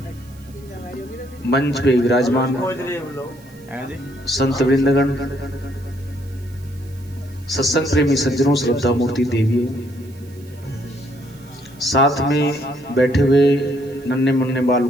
मंच पे विराजमान संत वृंदगण, सत्संग प्रेमी सज्जनों, श्रद्धा मूर्ति देवियों, साथ में बैठे हुए नन्हे मुन्ने बाल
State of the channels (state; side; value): noise; right; hiss, 27 dB below the sound